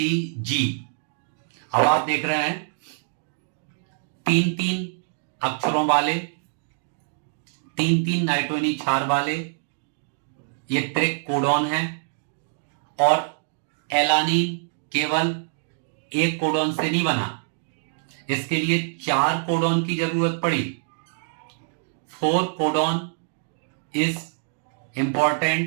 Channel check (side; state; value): left; silent; digital silence